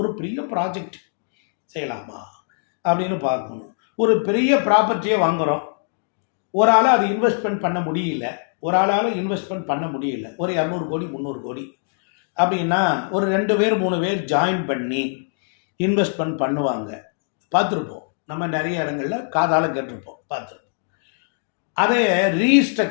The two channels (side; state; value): right; silent; digital silence